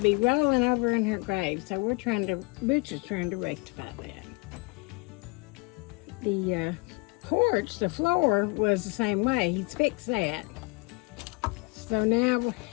be rolling over in her grave, so Butch is trying to rectify that. The porch, the floor was the same way. He's fixed that. So now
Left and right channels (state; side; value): quieter; right; 28.8 dB